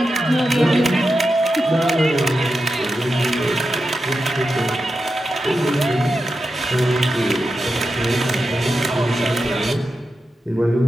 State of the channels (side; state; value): both; normal; correlation 0.89